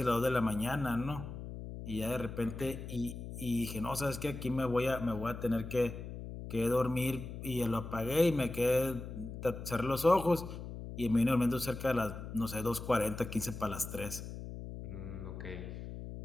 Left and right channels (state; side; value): noise; left; hum, 9 dB below the sound